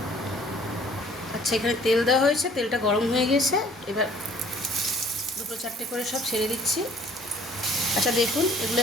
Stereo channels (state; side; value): normal; both; correlation 0.55